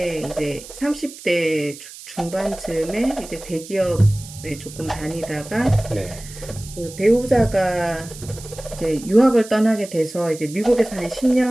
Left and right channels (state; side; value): noise; right; hiss, 16 dB below the sound